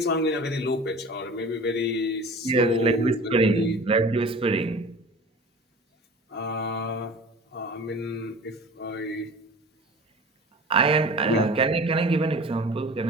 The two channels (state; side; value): normal; both; correlation 0.40